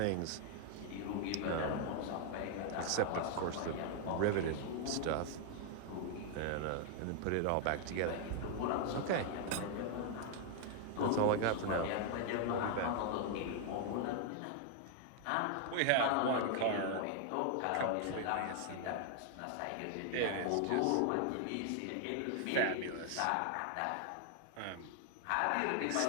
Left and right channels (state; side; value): different; both; correlation 0.00